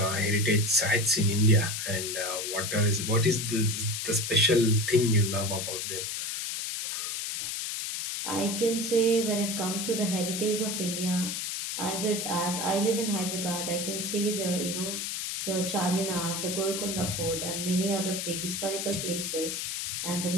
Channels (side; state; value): left; noise; hiss, 3 dB below the sound